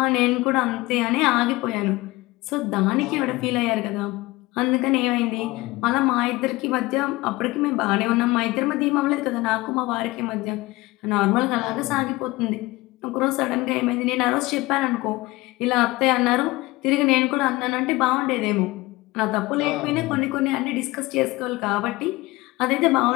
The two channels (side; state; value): right; quieter; 20.7 dB